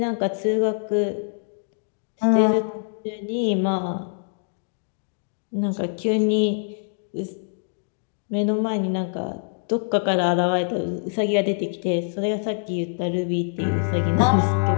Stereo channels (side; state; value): right; silent; digital silence